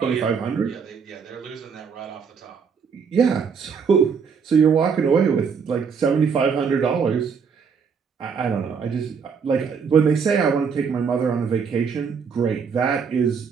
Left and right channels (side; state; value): left; quieter; 6.1 dB